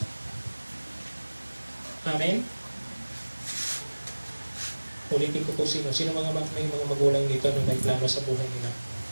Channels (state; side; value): inverted; both; correlation -1.00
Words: Amen? Ulitin ko po sino may mga magulang dito na may plano sa buhay nila.